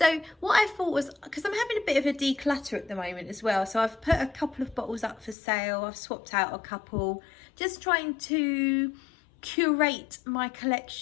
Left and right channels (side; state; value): right; drops out; at 5.4 s